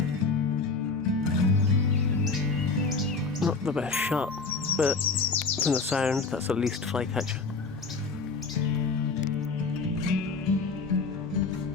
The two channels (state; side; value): quieter; right; 4.3 dB